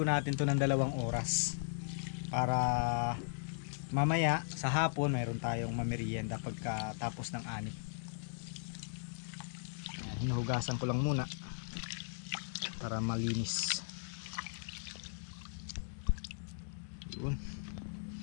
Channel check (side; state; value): right; silent; digital silence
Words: natin to ng 2 oras. Para mamaya sa hapon mayroon tayong mamerienda pagkatapos ng ani. Hinuhugasan ko lang muna para malinis. Yun.